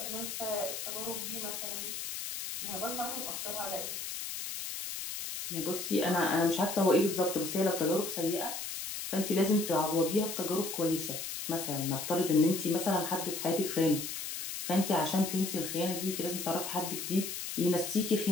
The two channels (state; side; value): noise; left; hiss, 5 dB below the sound